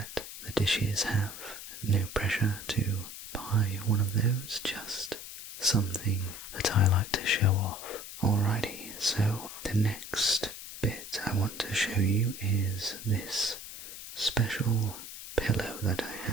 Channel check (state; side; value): noise; left; hiss, 11 dB below the sound